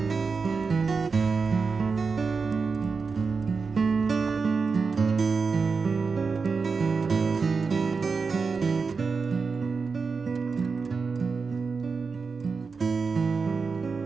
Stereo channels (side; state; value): left; quieter; 4.9 dB